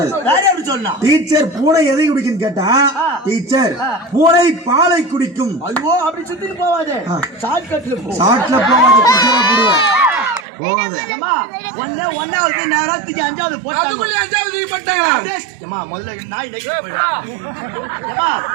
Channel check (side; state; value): left; drops out; at 10.5 s